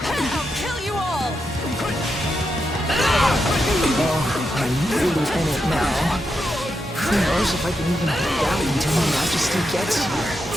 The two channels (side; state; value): both; normal; correlation 0.85